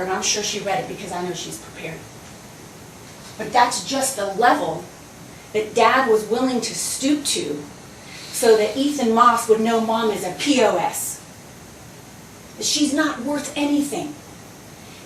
I'm sure she read it because I know she's prepared. But that's just the level that Dad was willing to stoop to so that Ethan Moss would know Mom is a POS. That she's not worth anything.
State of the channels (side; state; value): both; identical; correlation 1.00